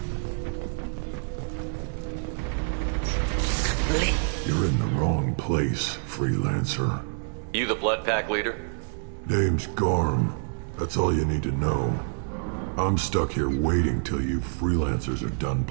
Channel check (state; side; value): silent; left; 60 dB below the other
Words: You're in the wrong place, freelancer. You the blood pack leader? Name's Garm. That's all you need to know. I'm stuck here waiting till you freelancers are done